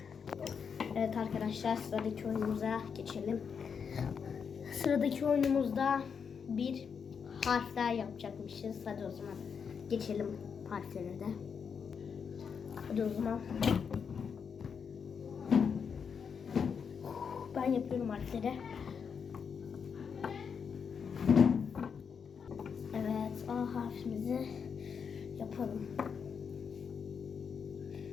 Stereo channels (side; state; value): right; quieter; 6.5 dB